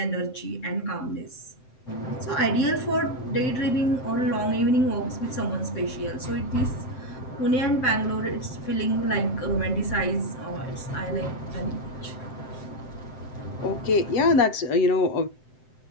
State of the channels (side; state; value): right; late; 7.8 ms